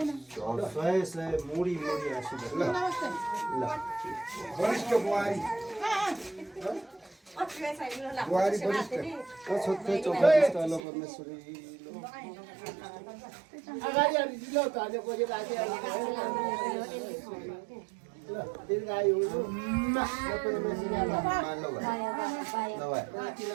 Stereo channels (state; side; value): drops out; left; at 10.8 s